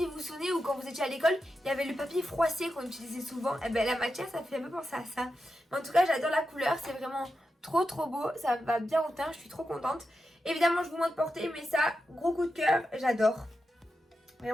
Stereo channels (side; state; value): both; normal; correlation 0.89